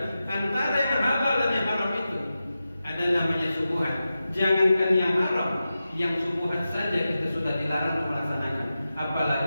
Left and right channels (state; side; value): inverted; both; correlation -0.92